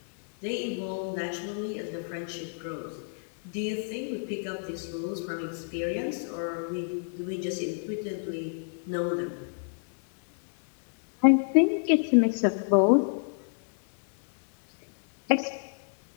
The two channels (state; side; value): silent; right; digital silence